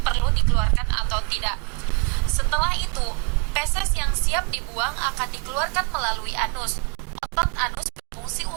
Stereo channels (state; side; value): quieter; left; 34.0 dB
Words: perlu dikeluarkan atau tidak. Setelah itu, feses yang siap dibuang akan dikeluarkan melalui anus. Otot anus berfungsi